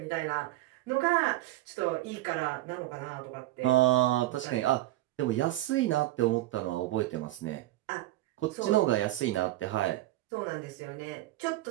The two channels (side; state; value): left; quieter; 16.5 dB